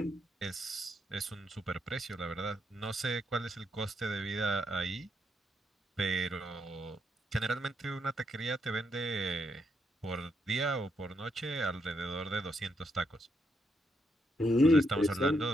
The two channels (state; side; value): normal; both; correlation 0.78